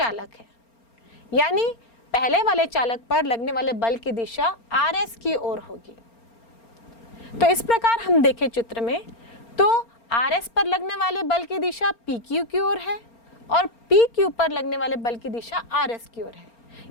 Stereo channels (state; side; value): late; right; 4.3 ms